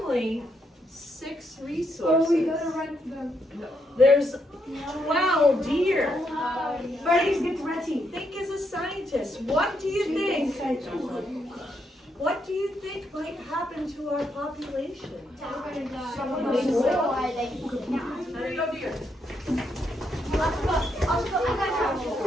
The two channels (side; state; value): both; normal; correlation 0.78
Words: 6 resources. Oh, we gotta write them. There's 12 deer. Freddy's get ready. Think as a scientist. What do you think? What do you think might happen to our population? How do you go, deer?